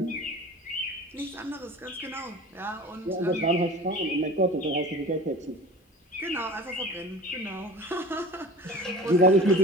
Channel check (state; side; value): normal; both; correlation 0.38